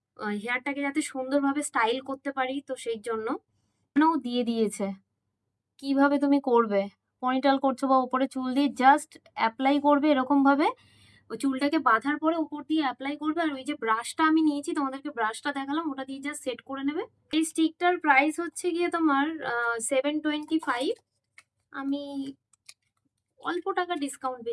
হেয়ারটাকে যাতে সুন্দরভাবে স্টাইল করতে পারি, তো সেই জন্য ও দিয়ে দিয়েছে কিভাবে তুমি করবে। পনিটাল করছো বা উপরে চুল দিয়ে জাস্ট অ্যাপ্লাই করবে এরকম ভাবে, ওই চুলটাকে বাঁধার পরে উপর দিয়ে অ্যাপ্লাই করবে, আর ওই যে ব্রাশটা আমি নিয়েছি, তোমাদেরকে ব্রাশটা দেখালাম, ওটা দিয়ে জাস্ট সেট করে নেবে। এই স্টিকটার প্রাইস হচ্ছে গিয়ে তোমার 725। আমি অল্প টাকা ডিসকাউন্ট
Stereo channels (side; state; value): both; identical; correlation 1.00